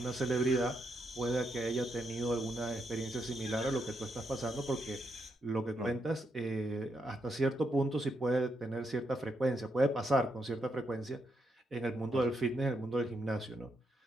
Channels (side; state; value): both; normal; correlation 0.79